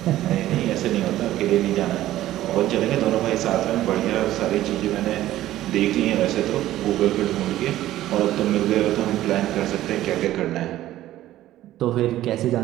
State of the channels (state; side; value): quieter; left; 14.3 dB